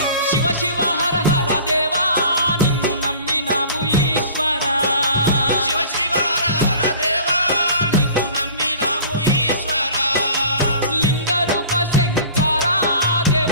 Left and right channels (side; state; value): both; inverted; correlation -0.45